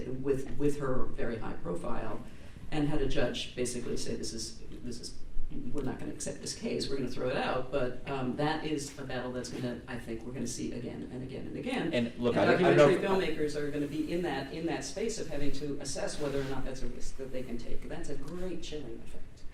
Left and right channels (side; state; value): both; identical; correlation 1.00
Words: with her very high profile, and had a judge basically say this is we're not going to accept this case, we're going to throw it out. But that is a battle that's going to, I think, we're going to see again and again and again. And look, and I don't documentary filmmakers are going to be in that space of having to assess whether or not that's a risk that they can take. That's a great chilling effect.